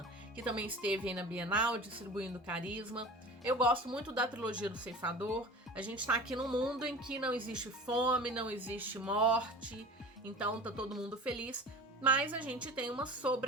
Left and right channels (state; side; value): normal; both; correlation 0.37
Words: que também esteve aí na Bienal distribuindo Carisma. Eu gosto muito da trilogia do Ceifador. A gente tá aqui num mundo em que não existe fome, não existe morte, então tá todo mundo feliz, mas a gente tem uma